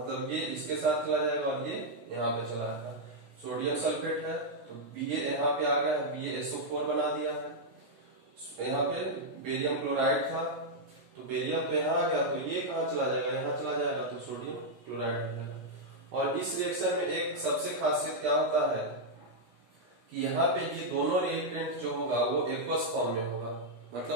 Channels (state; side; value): late; left; 16 ms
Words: ये इसके साथ चला जाएगा और ये यहाँ पे चला जाएगा। सोडियम सल्फेट है तो Ba यहाँ पे आ गया है, BaSO4 बना दिया है। यहाँ पे बेरियम क्लोराइड था तो बेरियम तो यहाँ आ गया, तो ये कहाँ चला जाएगा? यहाँ चला जाएगा, तो सोडियम क्लोराइड हो जाएगा। और इस रिएक्शन में एक सबसे खासियत क्या होता है कि यहाँ पे ये दोनों रिएक्टेंट जो होगा वो एक्वस फॉर्म में होगा,